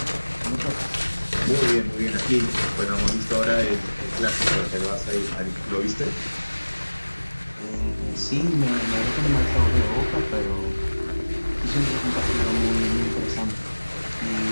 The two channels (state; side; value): inverted; both; correlation -1.00